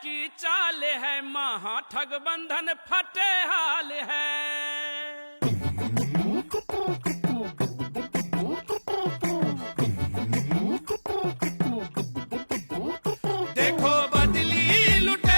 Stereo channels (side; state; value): both; inverted; correlation -1.00